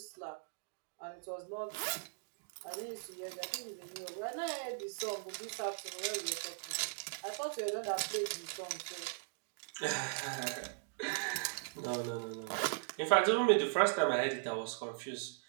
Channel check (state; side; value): silent; left; digital silence